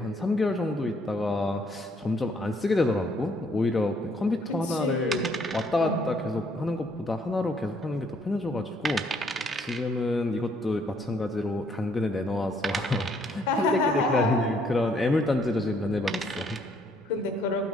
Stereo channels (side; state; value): both; normal; correlation 0.67